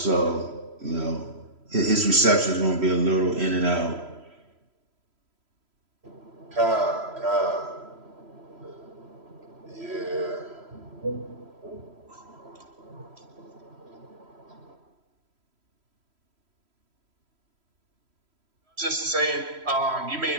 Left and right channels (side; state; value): left; late; 3.0 ms